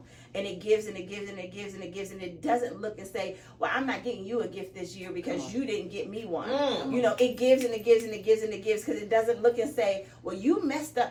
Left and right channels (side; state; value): both; identical; correlation 1.00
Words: And it gives and it gives and it gives and it gives, and it doesn't look and say, well, I'm not getting you a gift this year because you didn't get me one. You know, it gives and it gives and it gives and it gives, because it doesn't look and say, well, you messed